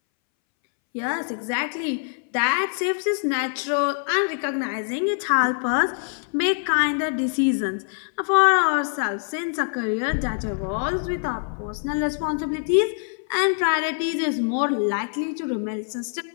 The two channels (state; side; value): silent; right; 62 dB below the other